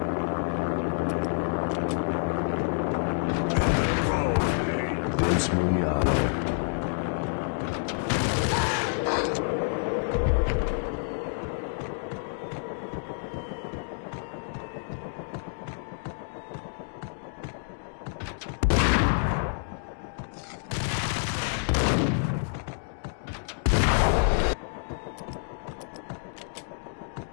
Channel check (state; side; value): silent; right; 59 dB below the other